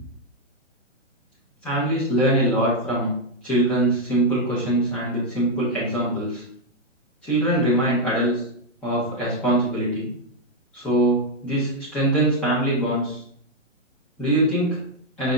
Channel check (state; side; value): normal; both; correlation 0.00